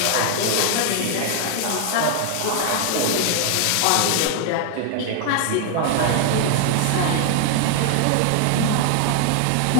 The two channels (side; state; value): both; different; correlation 0.00